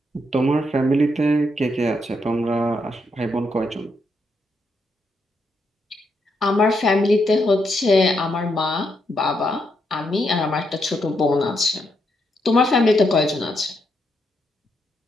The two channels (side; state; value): both; normal; correlation 0.79